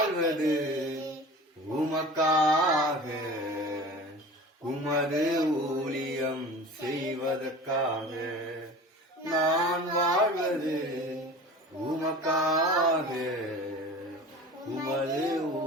உமக்காக, உமது ஊழியம் செய்வதற்காக. நான் வாழ்வது உமக்காக, உமது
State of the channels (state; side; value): normal; both; correlation 0.38